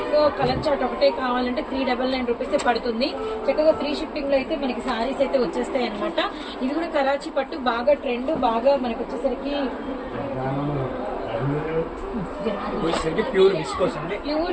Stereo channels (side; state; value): both; identical; correlation 1.00